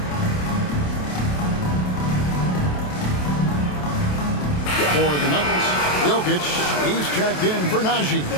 For the Nuggets, Jokic, he's checked in for Najee.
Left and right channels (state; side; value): late; right; 27 ms